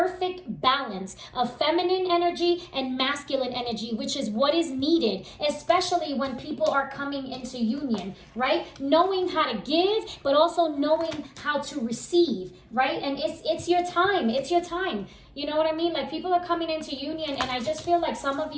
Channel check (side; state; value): both; identical; correlation 1.00